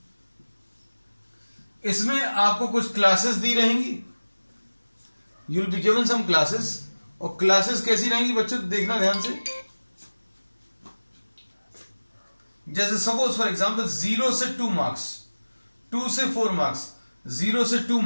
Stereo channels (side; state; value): both; inverted; correlation -1.00